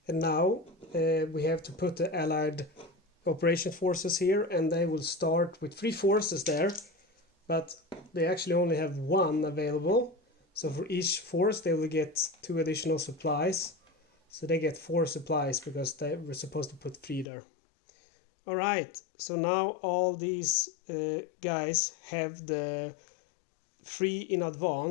And now we have to put the Allied operation forces here, and they will start with 3 forces there, but they actually only have 1 available. So for each force they will get 2 additional supplies, so they get 4 supplies because they were supposed to put 3 there. Alright, so now all these guys have the 3 in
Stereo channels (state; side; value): drops out; right; at 17.2 s